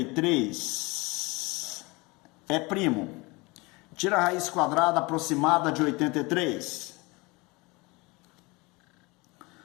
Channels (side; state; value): right; quieter; 25.2 dB